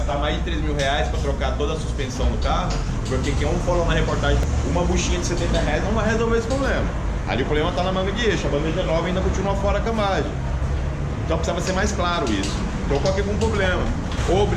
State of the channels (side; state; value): both; identical; correlation 1.00